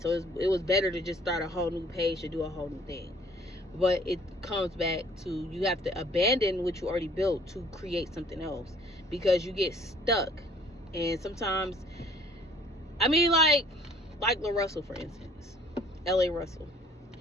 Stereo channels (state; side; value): normal; both; correlation 0.56